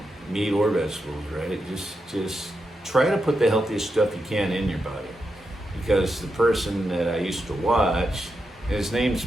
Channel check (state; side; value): normal; both; correlation 0.86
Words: meat or vegetables, right? Just try to put the healthiest stuff you can in your body. Because the person that I used to watch, his name's,